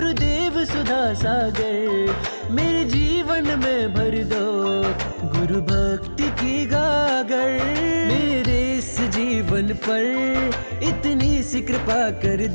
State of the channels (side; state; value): both; inverted; correlation -1.00